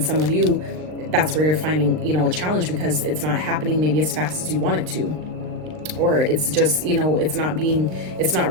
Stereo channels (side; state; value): left; late; 39 ms